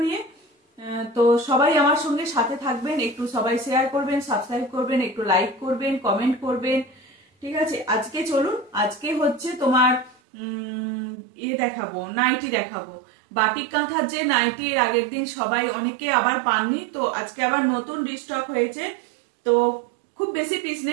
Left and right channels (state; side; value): drops out; left; at 10.2 s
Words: নিয়ে। তো সবাই আমার সঙ্গে সাথে থাকবেন, একটু সবাই শেয়ার করবেন, সাবস্ক্রাইব করবেন, একটু লাইক করবেন, কমেন্ট করবেন। ঠিক আছে, আজকে চলুন। আজকে হচ্ছে তোমার দেখাবো, নাইটি দেখাবো। বাটিক কাঁথার যে নাইটি এর আগের দিন সবাই অনেকে আবার পাননি, তো আজকে আবার নতুন রিস্টক হয়েছে। তো খুব বেশি পিস